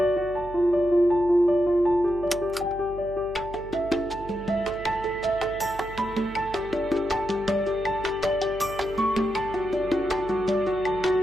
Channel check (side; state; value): right; noise; hum, 15 dB below the sound